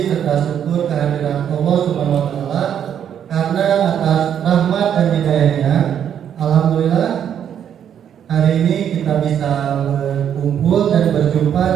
serta syukur kehadiran Allah Subhanahu wa taala karena atas rahmat dan hidayahnya alhamdulillah hari ini kita bisa berkumpul dan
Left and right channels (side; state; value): left; quieter; 9.1 dB